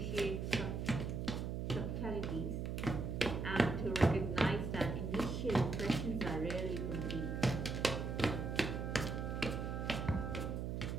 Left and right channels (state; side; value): noise; right; hum, 2 dB below the sound